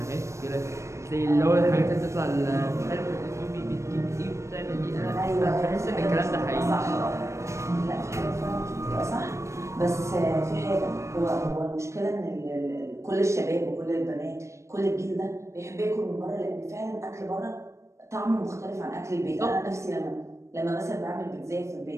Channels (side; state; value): left; late; 0.14 ms